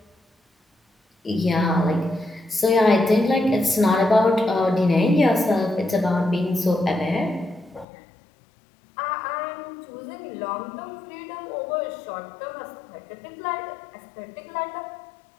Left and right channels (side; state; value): right; drops out; at 7.9 s